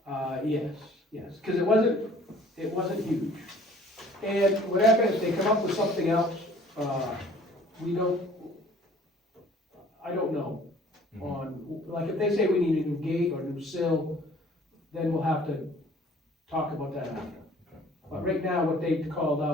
Yes, cause it wasn't huge. And whatever, if they come up with something else, I don't know. On, like, if they say we need a new gate or a new sill, then we'll have to talk about that after. But right now, what they called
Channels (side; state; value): both; normal; correlation 0.53